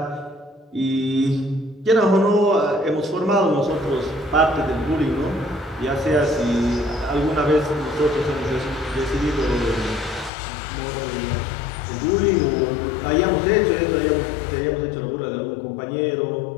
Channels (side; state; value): right; drops out; at 10.3 s